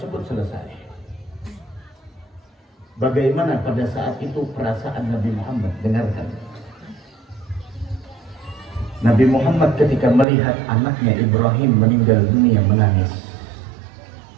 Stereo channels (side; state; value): left; drops out; at 10.2 s